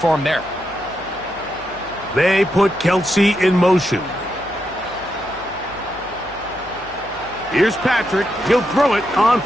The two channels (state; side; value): noise; left; hum, 21 dB below the sound